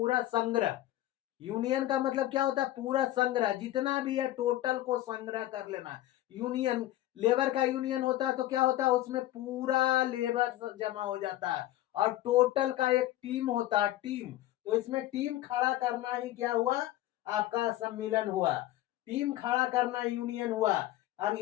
संग्रह। यूनियन का मतलब क्या होता है? पूरा संग्रह, जितना भी है टोटल को संग्रह कर लेना। यूनियन, लेबर का यूनियन होता है तो क्या होता है? उसमें पूरा लेबर जमा हो जाता है और टोटल का एक टीम होता है, टीम। तो इसमें टीम खड़ा करना ही क्या हुआ? आपका सम्मिलन हुआ। टीम खड़ा करना यूनियन हुआ।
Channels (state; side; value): quieter; right; 14.9 dB